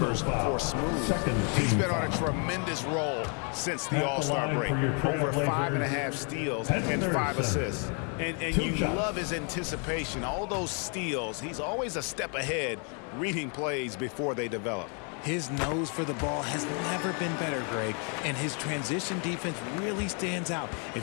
for Smooth. He's been on a tremendous roll since the All-Star break. Over 5.5 steals and 5 assists. And you love his anticipation. All those steals, he's always a step ahead, reading plays before they develop. His nose for the ball has never been better, Greg, and his transition defense really stands out.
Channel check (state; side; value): quieter; right; 38.5 dB